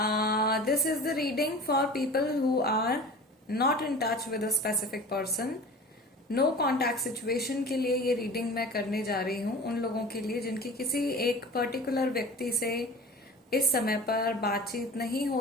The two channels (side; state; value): both; normal; correlation 0.39